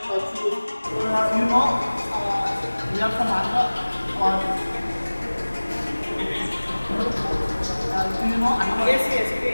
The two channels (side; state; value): both; inverted; correlation -1.00